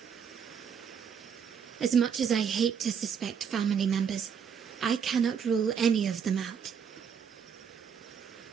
As much as I hate to suspect family members, I cannot rule any of them out.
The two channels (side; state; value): left; quieter; 7.2 dB